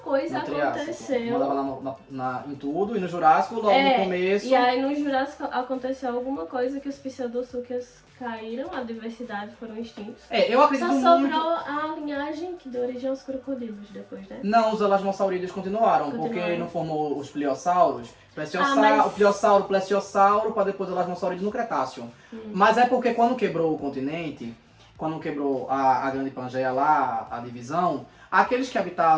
aconteceu. Mandava em tudo, e no Jurássico, logo no começo... E aí no Jurássico aconteceu alguma coisa que os pseudosúquias caíram, a diversidade, foram extintos. Eu acredito muito... Só sobrou a linhagem que deu origem aos crocodilos depois, né? Não, os elasmosaurídeos continuaram, porque não formou os pliossauros. O pliossauro, plesiosauro, para depois o elasmosaurídeo no Cretáceo. Mas é porque quando quebrou o continente, quando quebrou a Grande Pangeia lá, a divisão, aqueles que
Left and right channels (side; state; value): both; identical; correlation 1.00